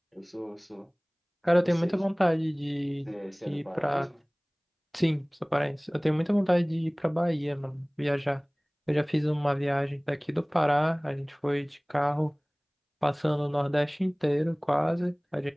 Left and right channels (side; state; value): both; identical; correlation 1.00